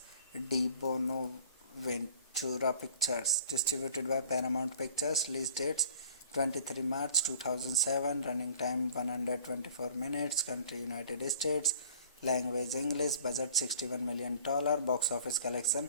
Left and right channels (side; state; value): both; inverted; correlation -0.49